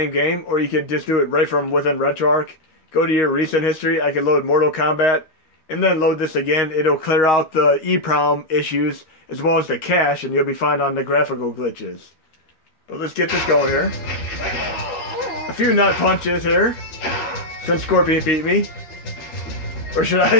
game, or you could just do it right from within RetroArch. Go to your recent history. I can load Mortal Kombat, and then load this again. It'll clear out the EEPROM issues as well as the cache, and you'll be fine on the graphical glitches. But let's get this going here. A few nut punches here, since Scorpion beat me. Or should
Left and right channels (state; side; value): late; right; 13 ms